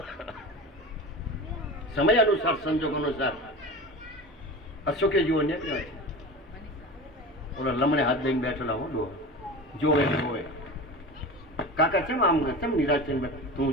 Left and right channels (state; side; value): normal; both; correlation 0.31